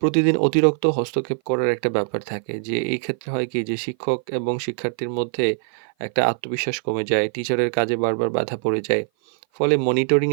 অতিরিক্ত হস্তক্ষেপ করার একটা ব্যাপার থাকে যে এই ক্ষেত্রে হয় কি যে শিক্ষক এবং শিক্ষার্থীর মধ্যে একটা আত্মবিশ্বাস কমে যায়, টিচারের কাজে বারবার বাধা পড়ে যায়। ফলে মনিটরিং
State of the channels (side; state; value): left; silent; 57 dB below the other